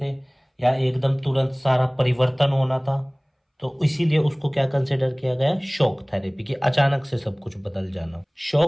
थे या एकदम तुरंत सारा परिवर्तन होना था, तो इसीलिए उसको क्या कंसिडर किया गया, शॉक थेरेपी, कि अचानक से सब कुछ बदल जाना।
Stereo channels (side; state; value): both; identical; correlation 1.00